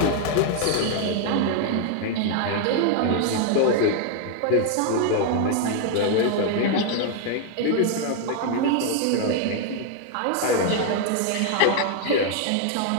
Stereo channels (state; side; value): different; both; correlation 0.00